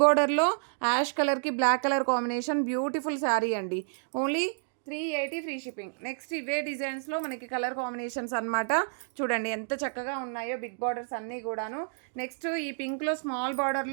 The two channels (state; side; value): silent; left; digital silence